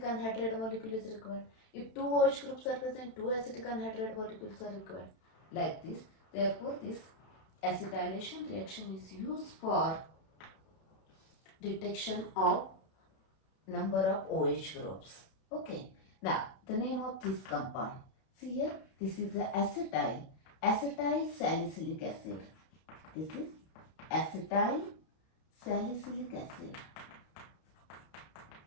anhydride molecule is required. If two OH groups are present, two acetic anhydride molecules are required. Like this, therefore this acetylation reaction is used for detection of number of OH groups. Okay, now the name of this compound. See here, this is the acetyl salicylic acid. This is acetyl salicylic acid.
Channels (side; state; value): right; late; 32 ms